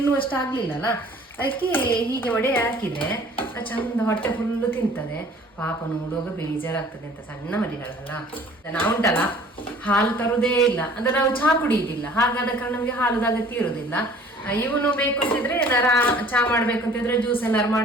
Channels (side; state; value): both; normal; correlation 0.51